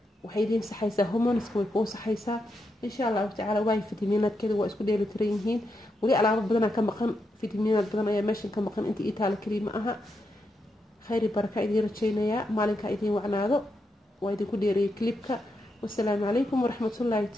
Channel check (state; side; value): normal; both; correlation 0.84